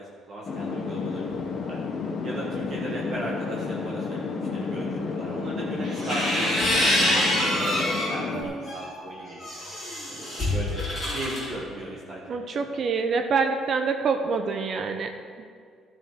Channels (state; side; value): normal; both; correlation 0.66